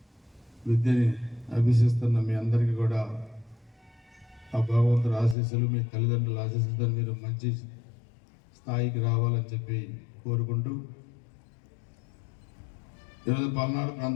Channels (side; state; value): right; drops out; at 5.4 s